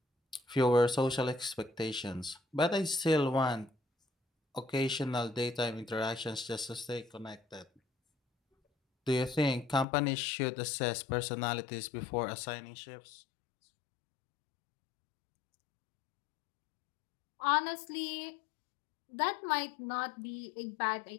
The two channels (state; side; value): drops out; right; at 9.9 s